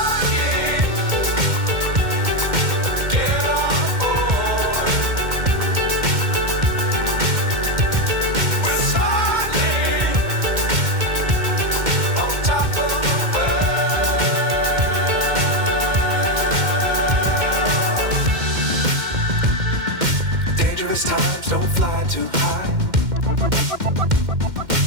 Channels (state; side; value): late; left; 2.1 ms